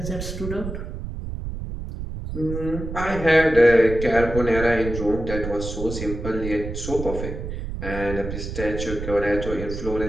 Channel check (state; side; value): noise; right; rumble, 7 dB below the sound